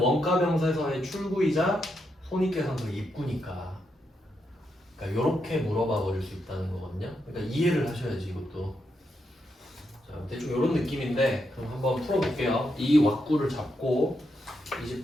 원가 명세서의 출구이자 손익계산서의 입구니까. 그러니까 이렇게 물어봐 버릴 수 있다는 거거든요. 그러니까 이해를 하셔야지 이것도. 자, 대충 이런 느낌인데 그럼 한번 풀어볼게요. 이 왁구를 잡고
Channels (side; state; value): both; normal; correlation 0.82